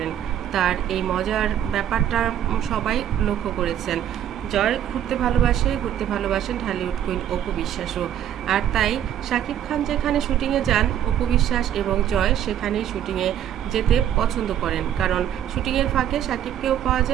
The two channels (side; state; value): left; quieter; 10.4 dB